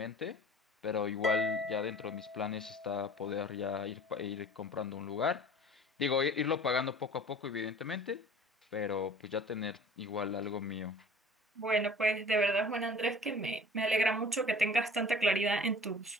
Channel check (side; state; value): both; normal; correlation 0.44